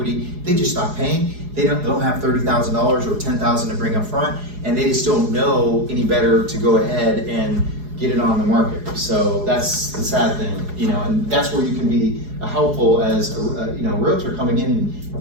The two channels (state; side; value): late; left; 4.8 ms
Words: They just stop paying. They don't have $30,000 or $10,000 to bring up front, and they just don't know any better to go ahead and get it on the market. So that's the sad thing, you know, and that's where you can be helpful as a realtor coming in